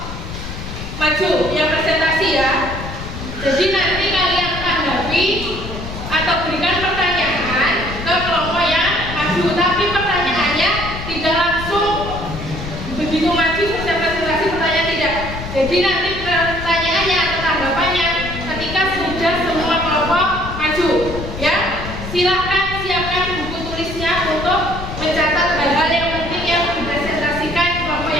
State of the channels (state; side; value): noise; left; rumble, 8 dB below the sound